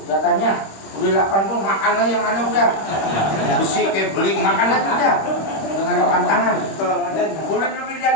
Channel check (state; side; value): late; right; 26 ms